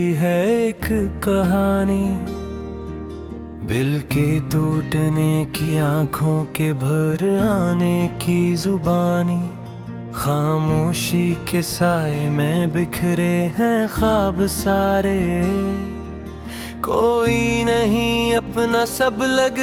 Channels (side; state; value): both; identical; correlation 1.00